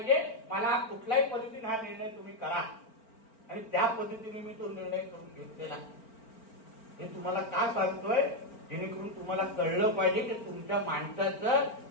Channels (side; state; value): right; late; 4.4 ms